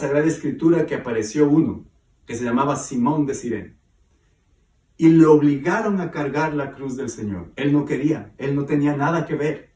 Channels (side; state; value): both; identical; correlation 1.00